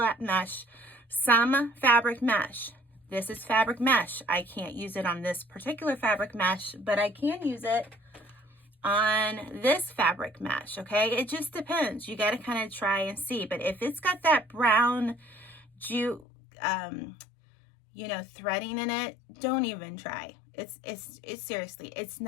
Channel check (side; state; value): right; drops out; at 16.2 s